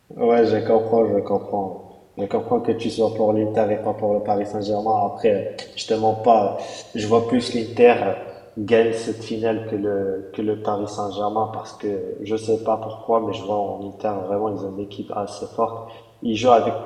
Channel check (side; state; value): both; identical; correlation 1.00